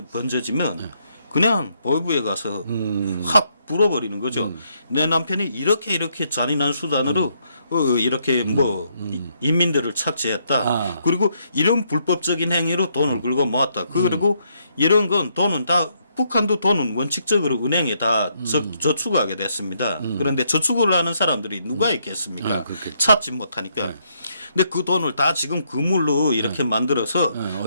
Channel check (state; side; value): inverted; both; correlation -0.74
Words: 번져지면 그냥 보이부에 가서 확 불어버리는 거죠. 내 남편이 이렇게 잔인한 수단으로 이렇게 뭐 인민들을 착취했다. 아. 그리고 이런 불법적인 행위로 돈을 긁어 모았다. 그리고 이런 건 돈은 다 북한도 돈은 원칙적으로 은행에 다 저축하게 됐습니다. 그런데 저축을 하는 사람들이 누가 있겠습니까? 아, 그렇겠죠. 찾지 못하니까. 근데 그 돈을 다 지금 그물로 이렇게 만들어서